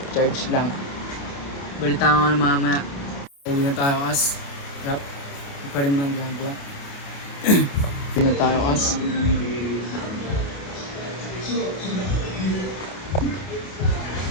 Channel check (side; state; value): right; late; 28 ms